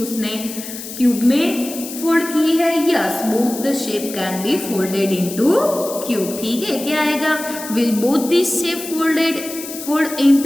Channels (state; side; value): noise; left; hiss, 11 dB below the sound